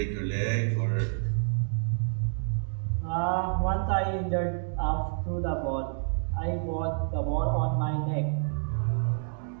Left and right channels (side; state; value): left; silent; digital silence